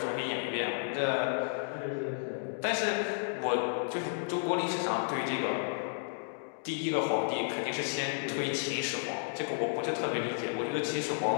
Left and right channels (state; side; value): silent; right; digital silence